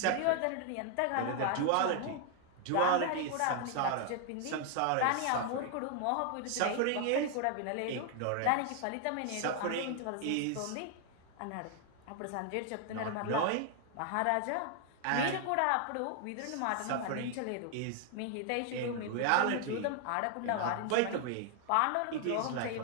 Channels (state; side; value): different; both; correlation 0.00